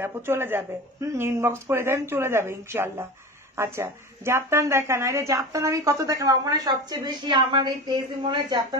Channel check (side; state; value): both; normal; correlation 0.30